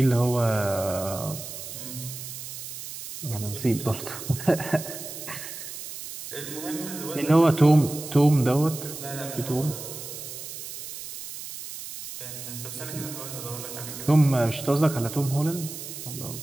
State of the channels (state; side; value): noise; right; hiss, 10 dB below the sound